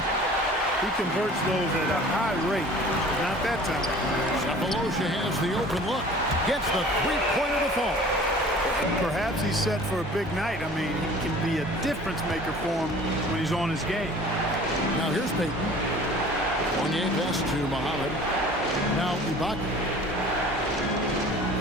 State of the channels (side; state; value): both; normal; correlation 0.46